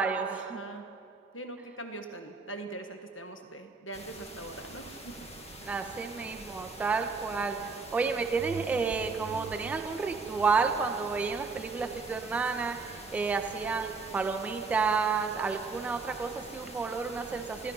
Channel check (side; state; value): left; quieter; 4.5 dB